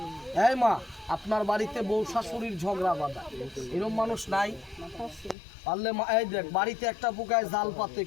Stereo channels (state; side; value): drops out; right; at 5.4 s